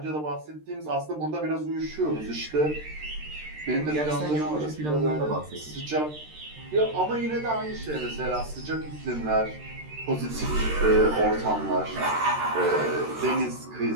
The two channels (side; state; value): left; late; 13 ms